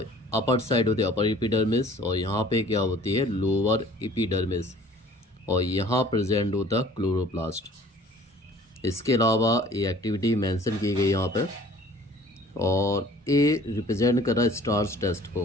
अपर साइड होती है अपर एपिडर्मिस, और यहाँ पे क्या होती है लोअर एपिडर्मिस, और यहाँ प्रेजेंट होता है क्लोरोप्लास्ट। इसके अलावा ये एक्टिविटी मेंशन की गई यहाँ पे, और ए रिप्रेजेंट कर रहा है स्टार्स टेस्ट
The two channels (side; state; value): both; normal; correlation 0.51